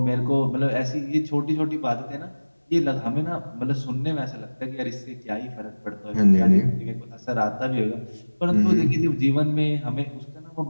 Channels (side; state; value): both; inverted; correlation -1.00